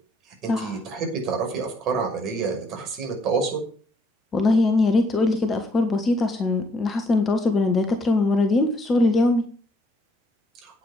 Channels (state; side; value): normal; both; correlation 0.69